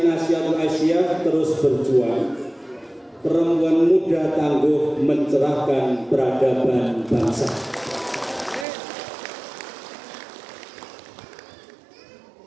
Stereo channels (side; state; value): left; drops out; at 8.7 s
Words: Aisyah terus berjuang. Perempuan muda tangguh mencerahkan peradaban bangsa.